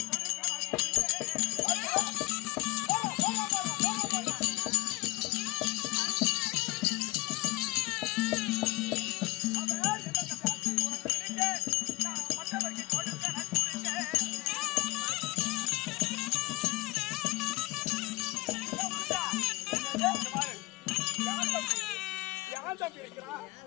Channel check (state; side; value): quieter; right; 23.1 dB